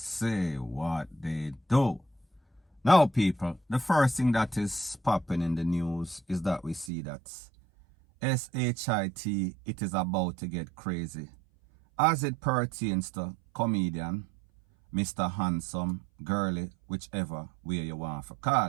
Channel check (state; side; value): drops out; left; at 6.9 s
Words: what they do. Now, people, the first thing that is popping in the news is that we see that SHIT, it is about to get crazy as it pertains to comedian Mr. Handsome, Girly, whichever way you want to